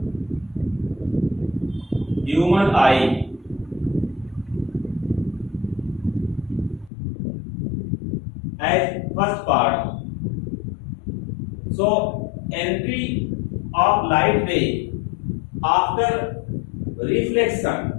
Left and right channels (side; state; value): right; drops out; at 6.9 s